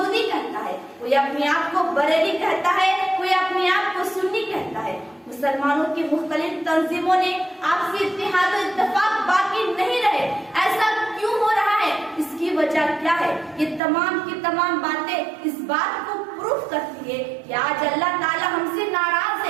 کہتا ہے، کوئی اپنے آپ کو بریلی کہتا ہے، کوئی اپنے آپ کو سنی کہتا ہے۔ مسلمانوں کی مختلف تنظیموں نے آپسی اتحاد و اتفاق باقی نہیں رہے۔ ایسا کیوں ہو رہا ہے؟ اس کی وجہ کیا ہے؟ یہ تمام کی تمام باتیں اس بات کو پروف کرتی ہے کہ آج اللہ تعالیٰ ہم سے ناراض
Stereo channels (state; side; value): drops out; left; at 13.8 s